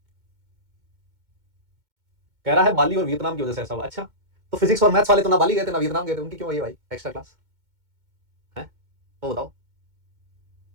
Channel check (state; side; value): late; left; 2.2 ms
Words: कह रहा है बाली और वियतनाम की वजह से ऐसा हुआ। अच्छा, तो फिज़िक्स और मैथ्स वाले तो ना बाली गए थे, ना वियतनाम गए थे, उनकी क्यों आई है भाई एक्स्ट्रा क्लास? हैं? वो बताओ।